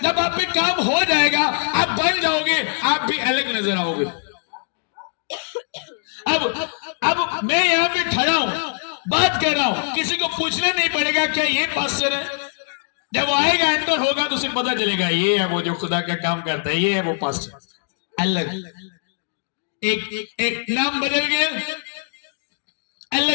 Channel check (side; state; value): right; silent; digital silence